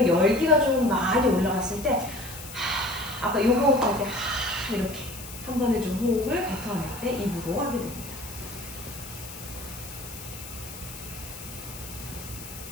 열기가 좀 많이 올라갔을 때 아까 요가 호흡할 때 이렇게 한 번에 좀 호흡을 뱉어낼 때 입으로 하게 됩니다.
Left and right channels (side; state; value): left; noise; hiss, 13 dB below the sound